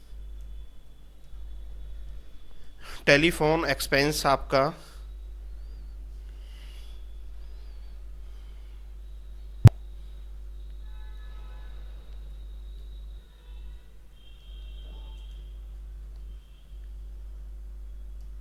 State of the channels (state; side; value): identical; both; correlation 1.00